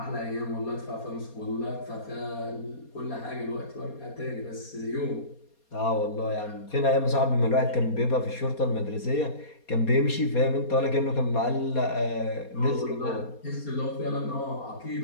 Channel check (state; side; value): late; right; 4.2 ms